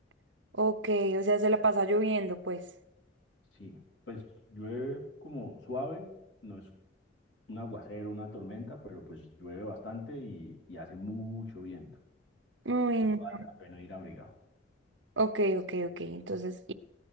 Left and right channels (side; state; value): both; normal; correlation -0.10